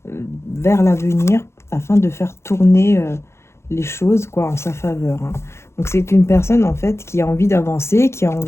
vers l'avenir afin de faire tourner les choses quoi en sa faveur, hein. Donc c'est une personne en fait qui a envie d'avancer, qui a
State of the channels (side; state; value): right; late; 0.13 ms